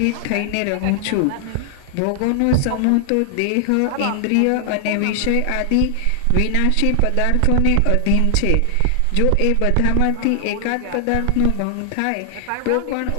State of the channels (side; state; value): both; different; correlation 0.00